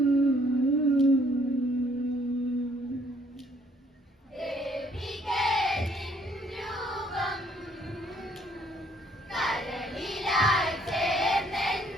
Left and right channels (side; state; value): both; normal; correlation 0.64